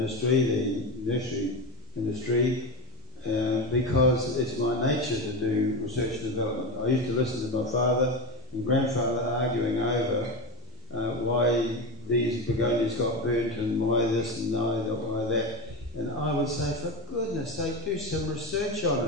the nursery industry, because it's my nature to do research and development. I used to listen to my father and grandfather arguing over why these begonias got burnt and why this and why that. And I would say, for goodness sake, do some research on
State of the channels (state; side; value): normal; both; correlation 0.18